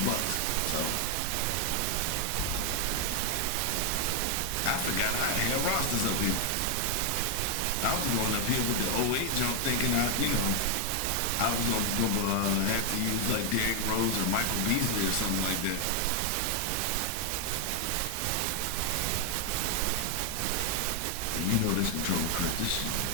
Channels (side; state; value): both; different; correlation 0.00